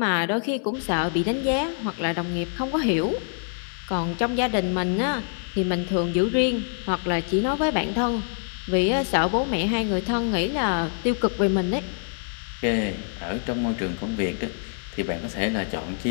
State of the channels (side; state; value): right; silent; digital silence